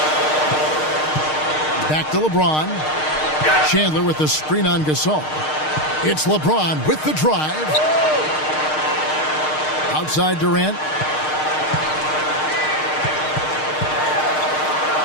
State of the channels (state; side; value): late; right; 6.5 ms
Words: Back to LeBron. Chandler with the screen on Gasol. It's LeBron with the drive. Outside Durant.